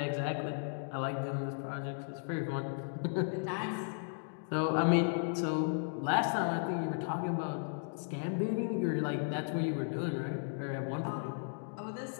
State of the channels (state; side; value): silent; right; digital silence